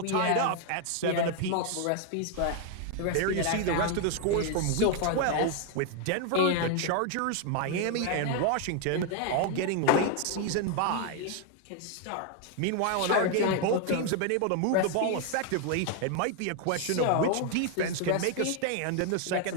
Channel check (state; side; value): different; both; correlation 0.00